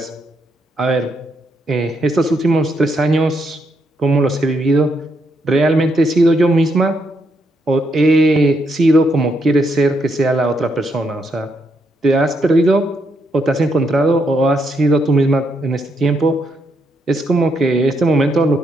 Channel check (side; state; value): both; normal; correlation 0.78